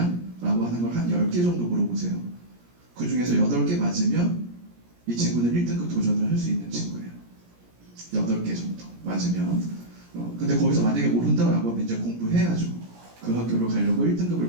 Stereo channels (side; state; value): left; late; 17 ms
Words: 라고 하는 걸 한 10개 정도 물어보세요. 그 중에서 8개 맞으면 이 친구는 1등급 도전을 할 수 있는 친구예요. 8개 정도 맞으면. 근데 거기서 만약에 모른다라고 하면 이제 공부해야죠. 그 학교로 가려고